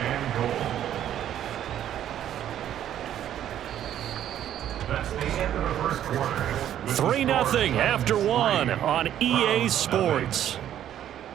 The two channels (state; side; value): quieter; left; 11.0 dB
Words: and goal. That's the end of the first quarter. 3-0 after 1 on EA Sports.